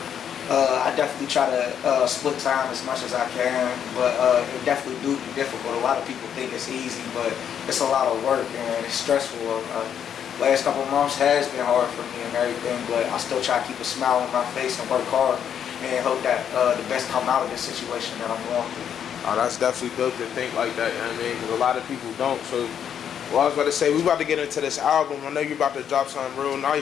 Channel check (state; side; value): quieter; right; 8.7 dB